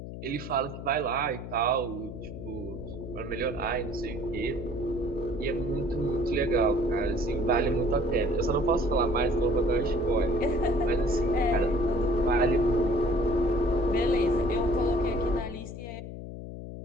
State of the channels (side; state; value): left; noise; hum, 10 dB below the sound